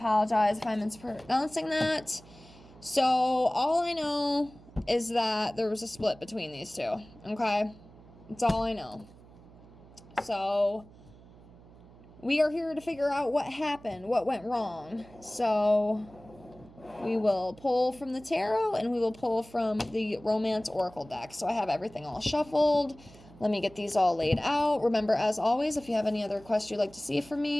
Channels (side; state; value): right; noise; hum, 22 dB below the sound